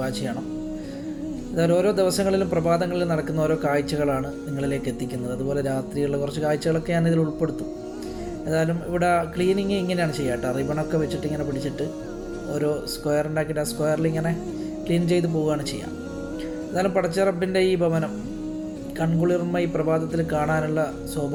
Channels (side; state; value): both; identical; correlation 1.00